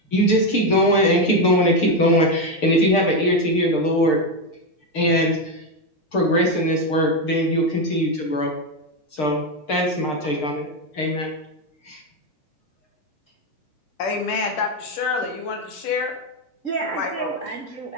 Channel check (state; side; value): late; right; 6.6 ms